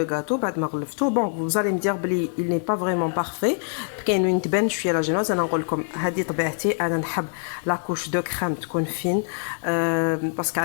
غاتو بعد ما غلفتو بون فوزالي مدير بلي il n'est pas vraiment parfait كاين وين تبان شويه لا جينوز. انا نقول لكم هذه طبيعتي انا نحب لا كوش دو كريم تكون فين باسكو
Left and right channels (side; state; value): right; silent; 57 dB below the other